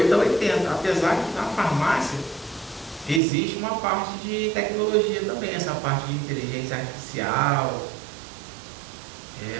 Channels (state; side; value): drops out; left; at 3.2 s